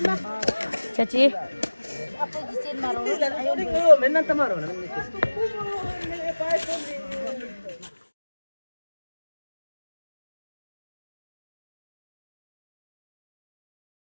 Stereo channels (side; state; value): both; inverted; correlation -1.00